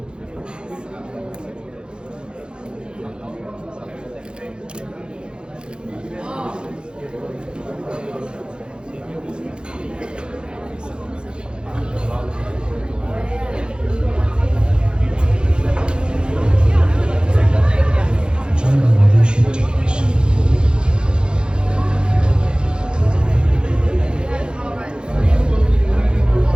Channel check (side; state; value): left; late; 0.050 ms